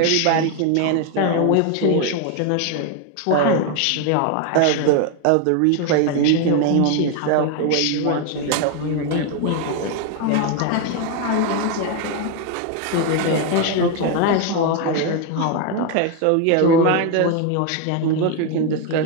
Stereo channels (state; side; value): different; both; correlation 0.01